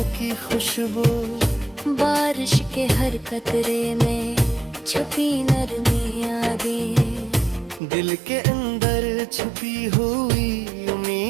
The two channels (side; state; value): left; drops out; at 7.8 s